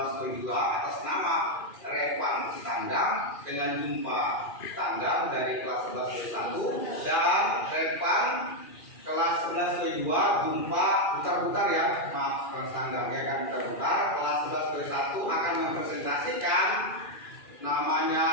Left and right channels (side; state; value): right; late; 2.4 ms